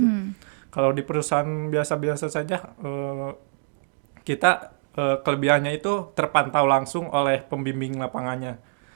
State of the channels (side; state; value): left; silent; digital silence